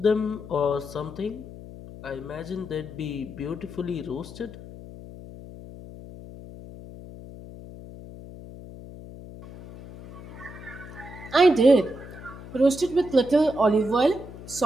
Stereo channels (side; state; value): left; noise; hum, 15 dB below the sound